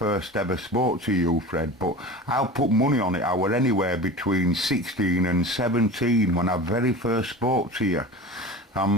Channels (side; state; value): both; normal; correlation 0.34